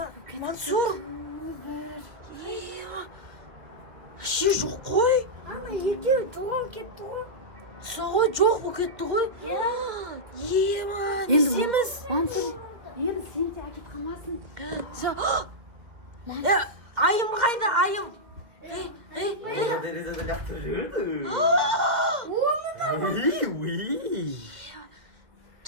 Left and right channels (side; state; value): left; late; 2.5 ms